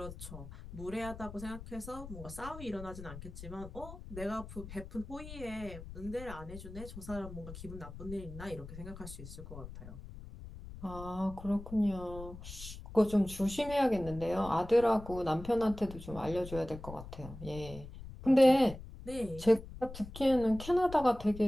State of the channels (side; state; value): left; noise; rumble, 13 dB below the sound